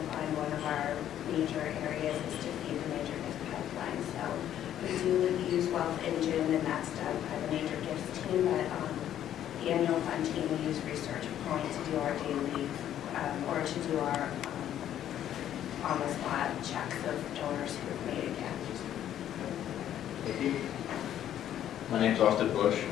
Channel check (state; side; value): quieter; right; 11.1 dB